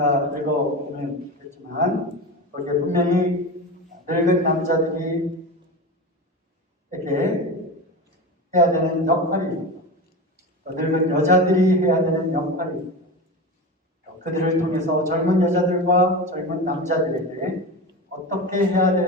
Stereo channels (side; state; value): both; normal; correlation 0.25